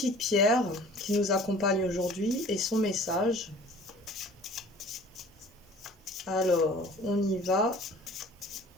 pierre qui nous accompagne aujourd'hui et son message. Alors, on y va.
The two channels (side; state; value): both; normal; correlation 0.48